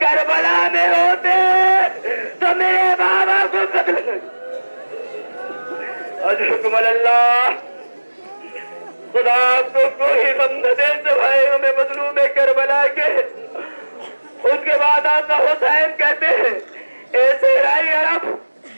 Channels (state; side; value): inverted; both; correlation -1.00